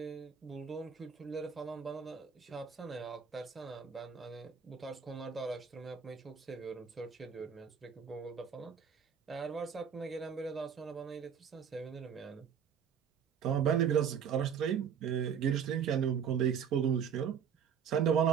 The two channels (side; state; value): left; quieter; 7.5 dB